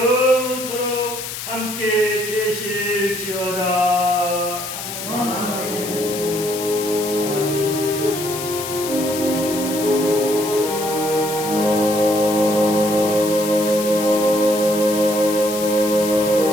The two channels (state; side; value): noise; left; hiss, 7 dB below the sound